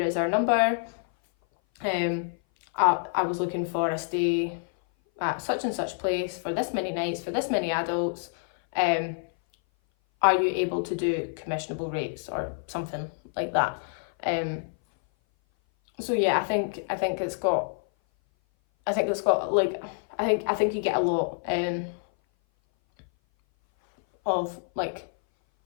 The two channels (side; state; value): right; silent; 57 dB below the other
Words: is our number. I was looking for a stay at such and such place for this many nights, for this many adults. Are you able to do commissionable rates or something like that? So yeah, I think it's got like I think you get a lot of like,